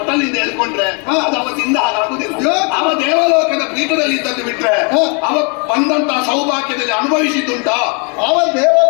ಹೇಳ್ಕೊಂಡ್ರೆ ಅದು ಅವತ್ತಿಂದ ಹಾಗಾಗುದಿಲ್ಲ. ಅವ ದೇವಲೋಕದ ಪೀಠದಲ್ಲಿ ಇದ್ದದ್ದು ಬಿಟ್ರೆ ಅವ ಬಂದಂತಹ ಸೌಭಾಗ್ಯದಲ್ಲಿ ಅನುಭವಿಸಿದ್ದುಂಟಾ? ಅವ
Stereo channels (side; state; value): right; quieter; 35.4 dB